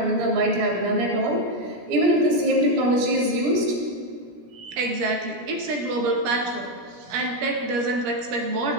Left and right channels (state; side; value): late; left; 17 ms